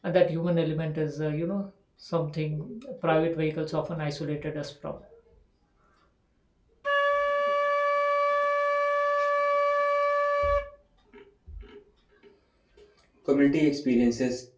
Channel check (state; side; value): identical; both; correlation 1.00